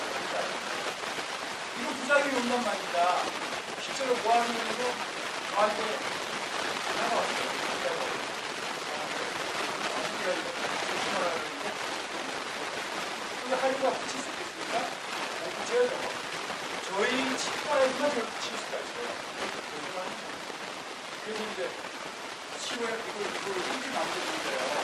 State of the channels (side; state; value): both; identical; correlation 1.00